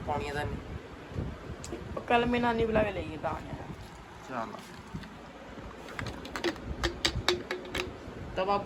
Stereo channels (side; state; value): both; identical; correlation 1.00